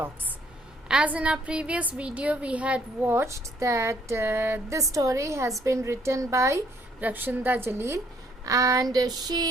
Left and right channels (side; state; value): both; normal; correlation 0.65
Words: As in our previous video, we had watched that this story has been written by Rakshanda Jalil, and